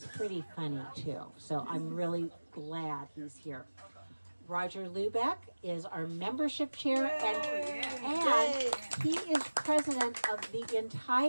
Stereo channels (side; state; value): both; inverted; correlation -1.00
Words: pretty funny too. So I'm really glad he's here. Roger Lubeck is our membership chair, and he is president of the